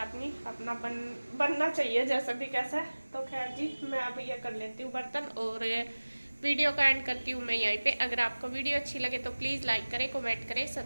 नहीं, अपना बनना चाहिए जैसे भी कैसे। तो खैर जी मैं अब ये कर लेती हूँ बर्तन और वीडियो का एंड करती हूँ मैं यहीं पे। अगर आपको वीडियो अच्छी लगे तो प्लीज़ लाइक करें, कमेंट करें,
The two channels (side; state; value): both; inverted; correlation -1.00